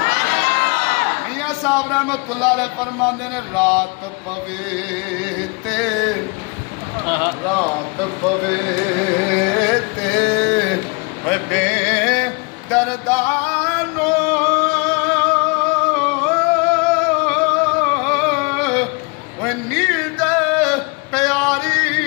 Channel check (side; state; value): right; quieter; 30.7 dB